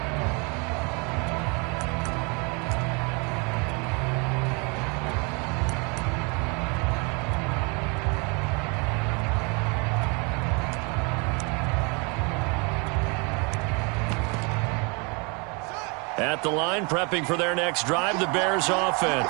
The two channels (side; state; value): left; quieter; 31.7 dB